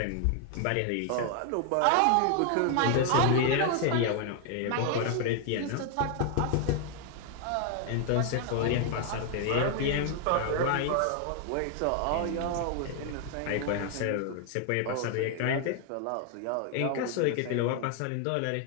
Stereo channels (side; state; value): both; different; correlation 0.00